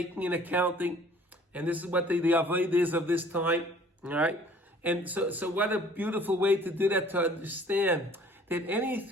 an accounting, and this is what the avodah is of this time, all right? And so what a beautiful way to do that, to understand that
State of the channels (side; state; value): both; normal; correlation 0.53